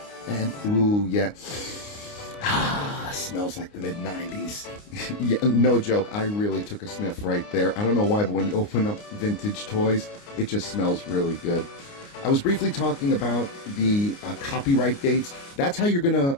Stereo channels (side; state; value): right; late; 29 ms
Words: And ooh, yeah. Smells like the mid-90s. Yeah, no joke. I really took a sniff right there. I don't know why, but when you open up vintage toys, it just smells really good. I was briefly talking about the copyright dates. That's how you're going to